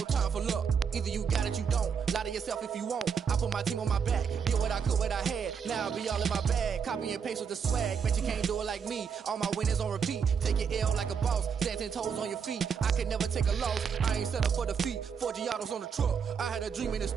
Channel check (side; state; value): left; quieter; 6.6 dB